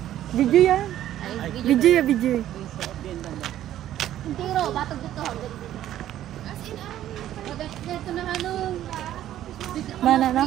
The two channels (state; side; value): quieter; left; 12.4 dB